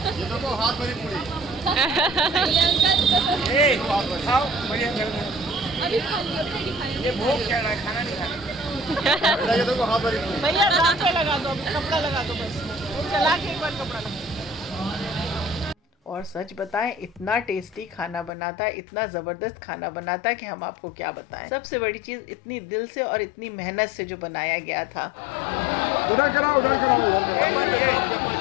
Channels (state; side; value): drops out; right; at 18.3 s